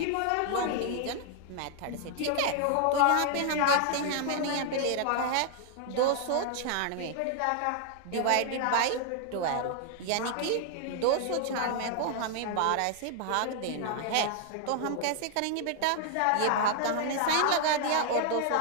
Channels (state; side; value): different; both; correlation 0.00